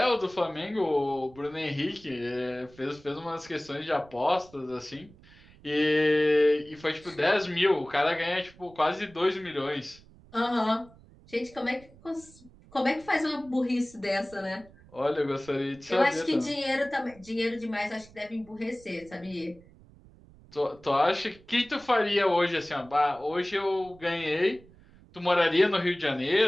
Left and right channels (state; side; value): noise; right; rumble, 24 dB below the sound